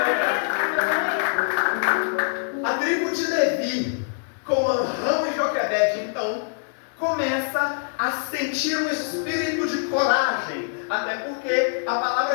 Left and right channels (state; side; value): silent; right; digital silence